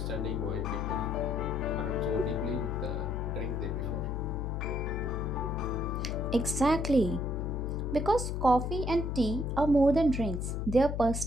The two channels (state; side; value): noise; left; hum, 2 dB below the sound